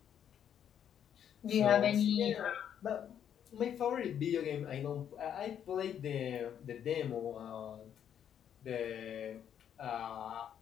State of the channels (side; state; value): right; quieter; 9.2 dB